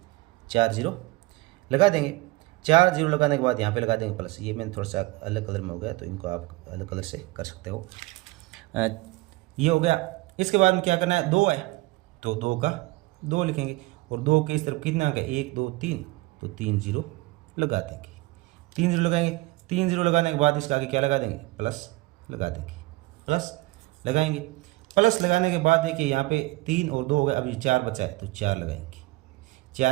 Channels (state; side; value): quieter; left; 21.1 dB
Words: 4 0 लगा देंगे। 4 0 लगाने के बाद यहाँ पे लगा देंगे प्लस। ये मैंने थोड़ा सा अलग कलर में हो गया तो इनको आप अलग कलर से कर सकते हो। ये हो गया। इसके बाद में क्या करना है, 2 है तो 2 का 2 लिखेंगे। और 2 के इस तरफ कितना अंक है, 1 2 3, तो 3 0 लगा देंगे। 3 0 लगाएंगे। 3 0 लगाने के बाद इसका आगे क्या लगा देंगे, प्लस लगा देंगे। प्लस लगाएंगे। प्लस लगाने के बाद देखिए यहाँ पे 3 और 2 हो गए, अब ये 4 बचा है तो 4 लगाएंगे।